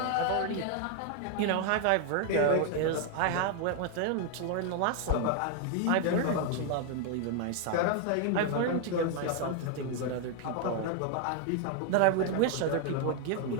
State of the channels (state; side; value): different; both; correlation 0.01